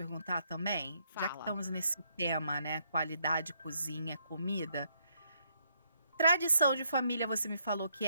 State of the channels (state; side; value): inverted; both; correlation -0.73